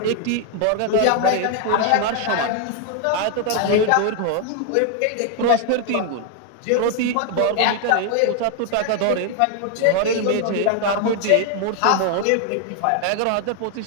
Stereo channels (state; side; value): different; both; correlation 0.00